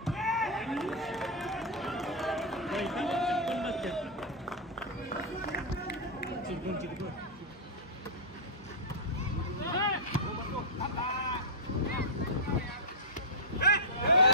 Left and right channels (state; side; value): normal; both; correlation -0.07